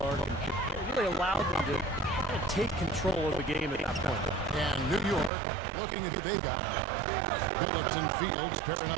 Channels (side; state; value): left; drops out; at 5.3 s